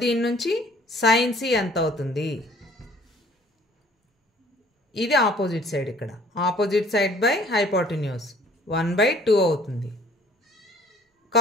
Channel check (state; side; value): normal; both; correlation 0.55